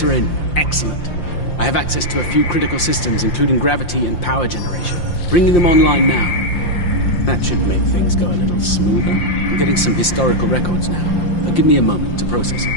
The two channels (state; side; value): late; right; 5.7 ms